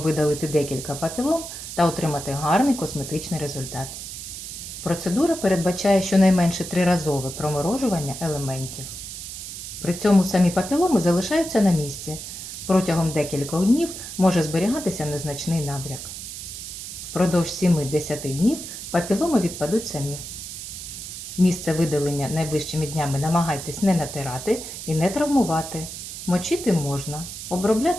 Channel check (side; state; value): right; noise; hiss, 9 dB below the sound